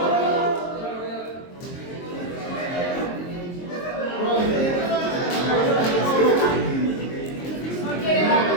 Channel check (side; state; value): right; late; 23 ms